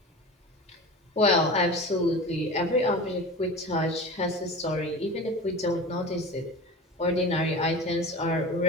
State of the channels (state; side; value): normal; both; correlation 0.33